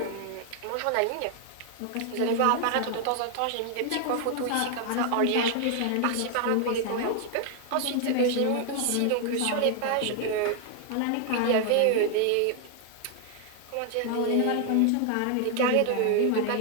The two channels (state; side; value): different; both; correlation 0.00